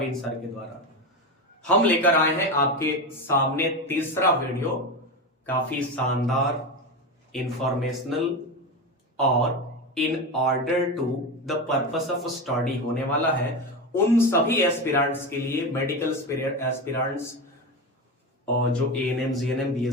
सर के द्वारा। हम लेकर आए हैं आपके सामने तीसरा वीडियो, काफी शानदार, इंफॉर्मेशनल और in order to the purpose of study होने वाला है उन सभी एस्पिरेंट्स के लिए, मेडिकल एस्पिरेंट्स और जो एएनएम, जीएनएम,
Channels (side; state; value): both; normal; correlation 0.19